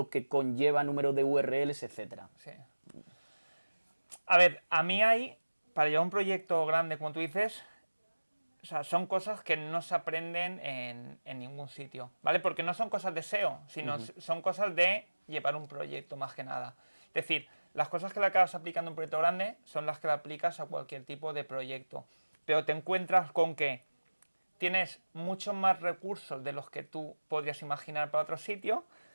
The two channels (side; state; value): both; inverted; correlation -1.00